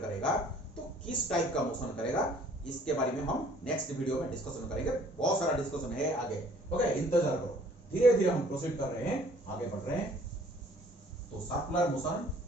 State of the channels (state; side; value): normal; both; correlation 0.56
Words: करेगा तो किस टाइप का मोशन करेगा, इसके बारे में हम नेक्स्ट वीडियो में डिस्कशन करेंगे। बहुत सारा डिस्कशन है आगे। ओके, इंतजार करो, धीरे धीरे हम प्रोसीड कर रहे हैं, आगे बढ़ रहे हैं। तो सर्कुलर मोशन